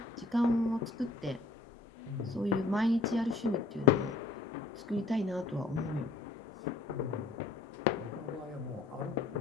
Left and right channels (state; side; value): quieter; right; 3.5 dB